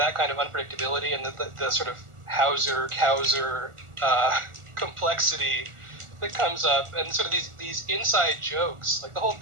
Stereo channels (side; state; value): left; late; 1.4 ms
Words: kind of unpredictability and the sort of Hauser-Cowser complexity that comes up, and sort of these inside jokes, like the whole